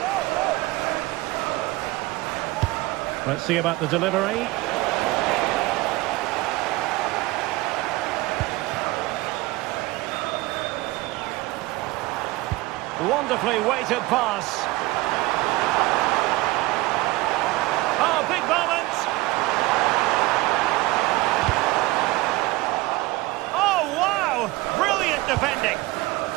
Let's see about the delivery. Wonderfully weighted pass. Oh, big moment. Oh, wow. Brilliant defending.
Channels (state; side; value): quieter; left; 20.3 dB